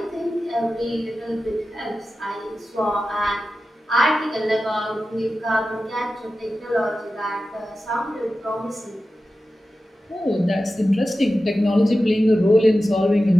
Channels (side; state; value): both; normal; correlation 0.93